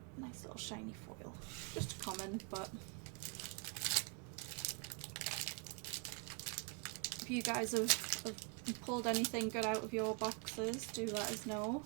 nice little shiny foil. Just a common, but if you guys have pulled anything good out of your boxes, do let us know.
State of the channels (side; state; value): left; quieter; 35.3 dB